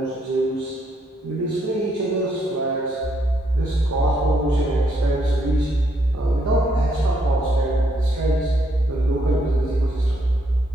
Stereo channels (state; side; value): normal; both; correlation 0.74